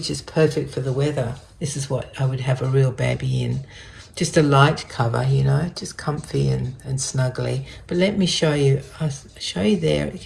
is perfect for the weather. This is what I would have a real baby in. Just a light cover, just comfy and snuggly. But let me show you. I'll show you there.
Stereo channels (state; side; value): identical; both; correlation 1.00